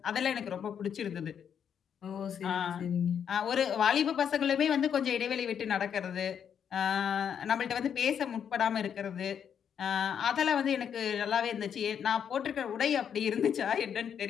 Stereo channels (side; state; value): right; quieter; 8.1 dB